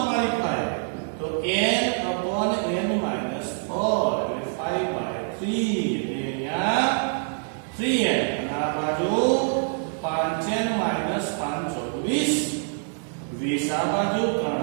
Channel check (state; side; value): silent; left; digital silence